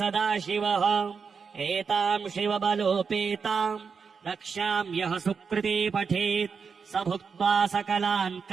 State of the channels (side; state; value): left; quieter; 5.7 dB